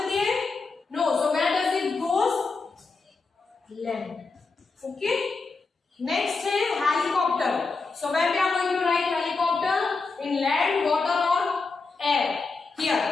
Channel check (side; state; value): right; quieter; 4.2 dB